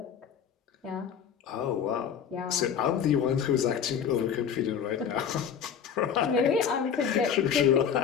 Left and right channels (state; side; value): quieter; right; 7.8 dB